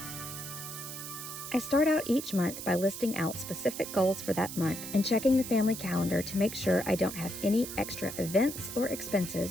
I start out each month by listing out specific goals for that month and checking the family calendar to make sure I don't have any extra events or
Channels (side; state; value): right; noise; hiss, 9 dB below the sound